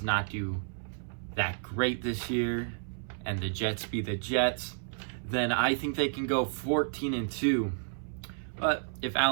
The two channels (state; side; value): silent; left; 57 dB below the other